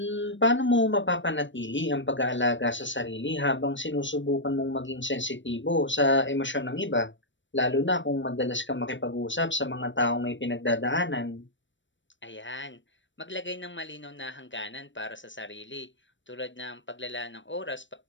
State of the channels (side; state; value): right; late; 0.54 ms